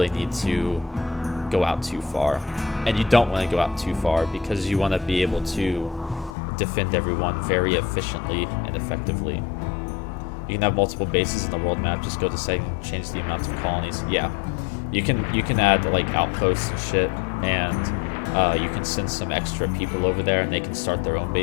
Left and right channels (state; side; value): drops out; right; at 6.4 s